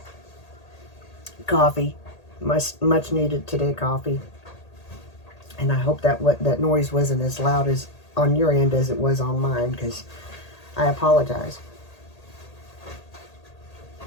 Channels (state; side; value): late; right; 1.8 ms